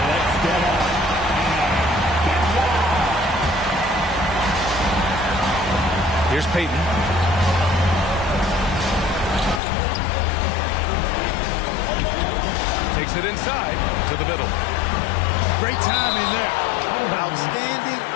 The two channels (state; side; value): drops out; right; at 9.6 s